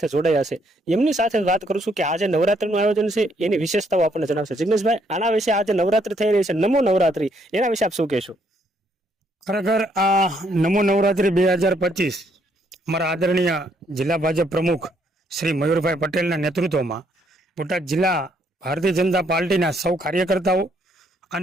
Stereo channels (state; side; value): normal; both; correlation 0.70